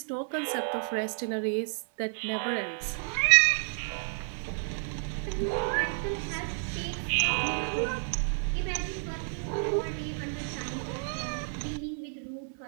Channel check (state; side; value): silent; left; 57 dB below the other